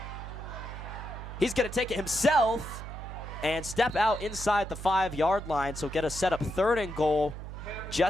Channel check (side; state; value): right; noise; hum, 9 dB below the sound